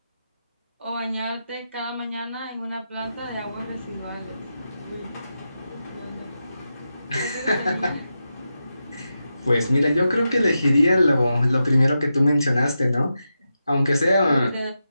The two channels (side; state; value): both; inverted; correlation -0.89